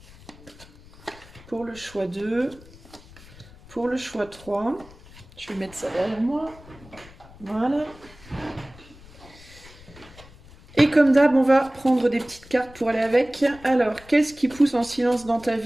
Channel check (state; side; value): noise; left; rumble, 21 dB below the sound